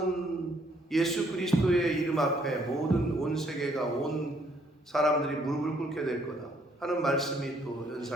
예수 그리스도의 이름 앞에 모든 온 세계가, 온 사람들이 무릎을 꿇게 될 거다 하는 말씀이 또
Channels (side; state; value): both; normal; correlation 0.67